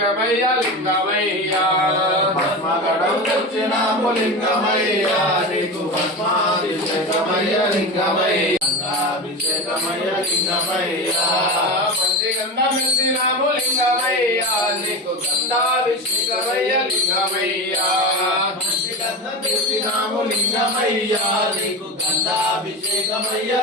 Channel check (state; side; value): normal; both; correlation 0.24